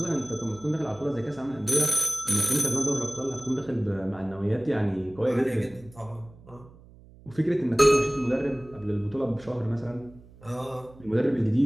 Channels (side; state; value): right; noise; hum, 23 dB below the sound